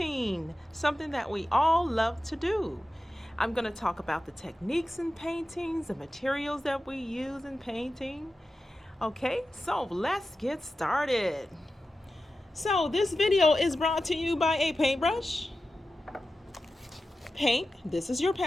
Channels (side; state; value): both; normal; correlation 0.93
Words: something that we all love to do. I'm going to talk about the techniques in paintings, the materials that we use in painting. Okay, so let's get started. So this video is brought to you by a paintbrush, paint, this is your